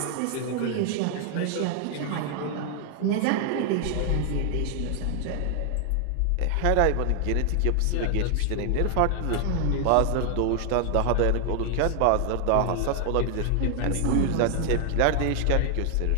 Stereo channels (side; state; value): both; different; correlation 0.00